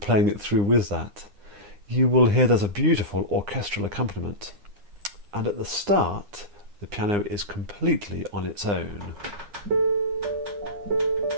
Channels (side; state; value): left; late; 9.8 ms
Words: it through with that. You will hear there's a beautiful orchestral accompaniment. And at the start, the piano is completely on its own.